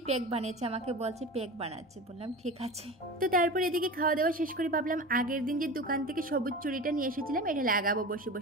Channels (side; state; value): both; normal; correlation 0.31